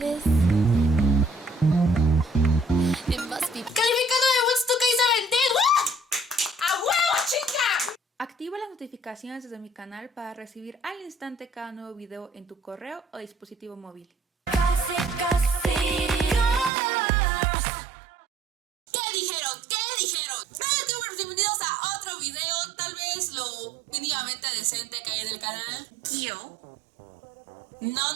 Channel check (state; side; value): drops out; left; at 16.7 s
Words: is? It must be... ¡Calificando de Woodstock Isabel! ¡A huevo, chica! Activa las notificaciones desde mi canal para recibir al instante cada nuevo video en tu correo o dispositivo móvil. ¿Qué dijeron? ¿Qué dijeron? Bienvenidos a otro video, tal vez lo mínimamente decente que hay en el canal.